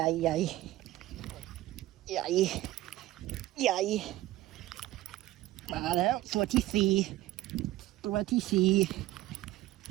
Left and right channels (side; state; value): left; quieter; 16.2 dB